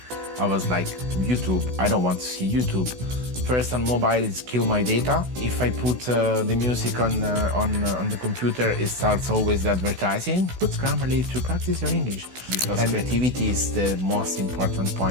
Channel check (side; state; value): left; late; 16 ms